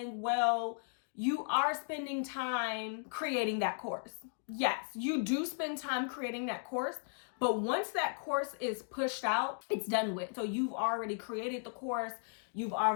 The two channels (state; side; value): silent; right; digital silence